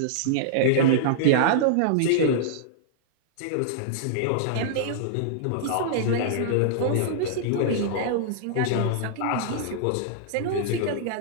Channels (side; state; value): both; different; correlation -0.02